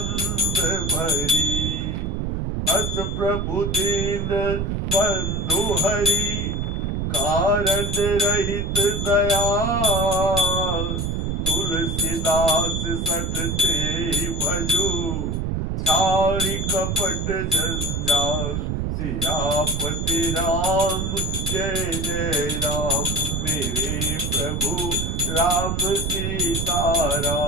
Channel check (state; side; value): noise; right; rumble, 1 dB below the sound